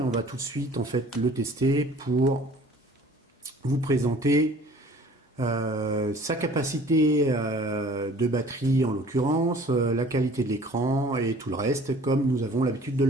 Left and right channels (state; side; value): normal; both; correlation 0.50